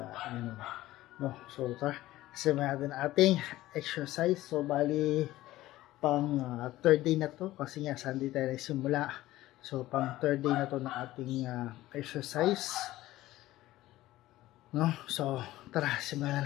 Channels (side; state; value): right; quieter; 16.1 dB